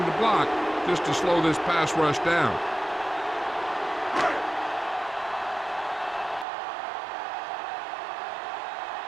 the block just to slow this pass rush down.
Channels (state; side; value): drops out; left; at 6.5 s